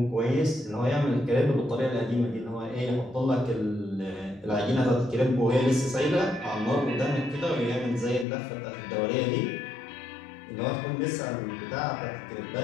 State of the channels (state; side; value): drops out; right; at 8.2 s